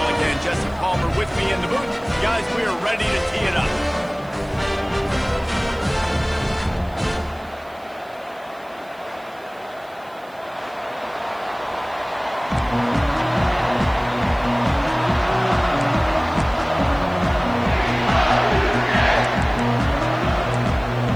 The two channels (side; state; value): right; noise; hiss, 29 dB below the sound